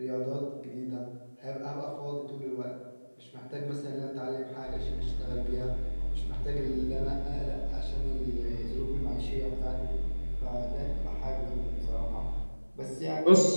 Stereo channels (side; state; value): both; inverted; correlation -1.00